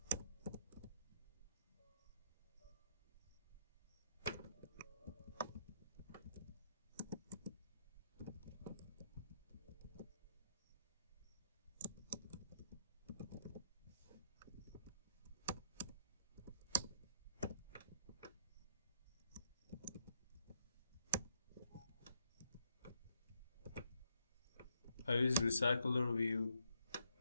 I use recycler view.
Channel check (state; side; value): inverted; both; correlation -0.74